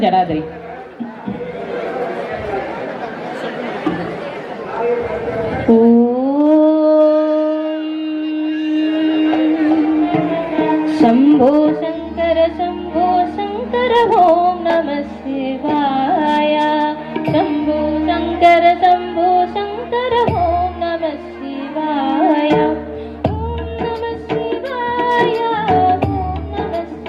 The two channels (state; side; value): identical; both; correlation 1.00